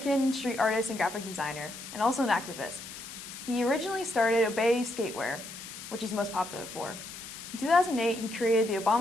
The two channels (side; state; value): left; noise; hiss, 12 dB below the sound